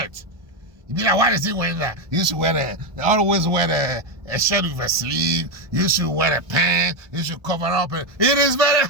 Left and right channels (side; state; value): left; late; 1.2 ms